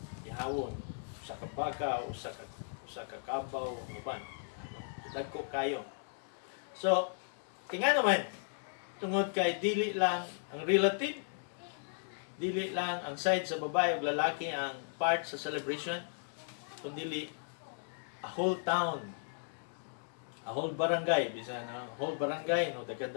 ihawon sa kabaka o sa kakabaw uban, no? Dagko kayo. So tinga naman, tungod kay dili lang ang relative, dili lang ang side sa babae o lalaki ang part sa celebration, kundi a whole town, a whole barangay, bisan whole barangay, no,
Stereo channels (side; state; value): right; silent; digital silence